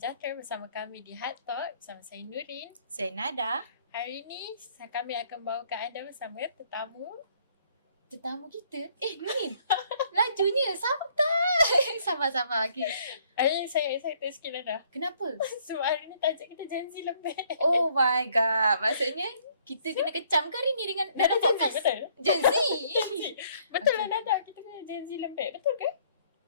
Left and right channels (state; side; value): inverted; both; correlation -0.64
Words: bersama kami di Atau, bersama saya Nurin. Saya Nada. Hari ini kami akan bawakan anda bersama Tetamu kita. Nurin, lajunya santai. Sabar. Okay. Hari ini saya excited sikit Nada. Kenapa? Sebab hari ini tajuk kita Gen Z Lembik. Oh my god. Maksudnya kita kena kecam ke hari ni dengan Nada Gen Z? betul? Gen Z? Betul lah Nada, kita kena Gen Z Lembik. Betul ke?